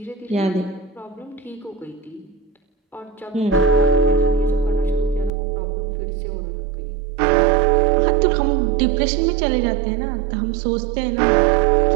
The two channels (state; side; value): drops out; left; at 5.3 s